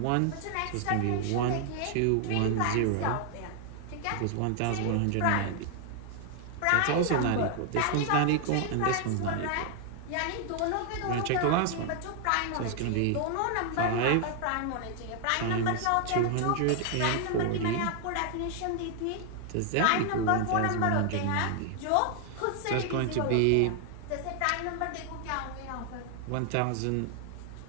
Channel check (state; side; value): different; both; correlation 0.00